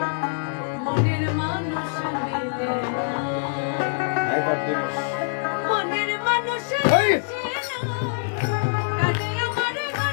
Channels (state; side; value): silent; right; digital silence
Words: মনের মানুষ মিলে মনের মানুষ আসে না কানে আমার